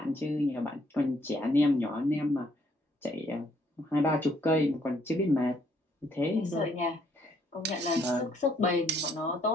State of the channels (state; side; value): normal; both; correlation 0.68